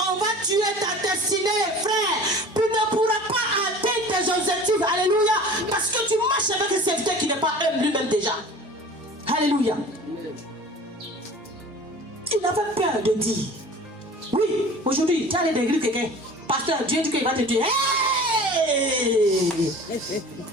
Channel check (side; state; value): both; normal; correlation 0.42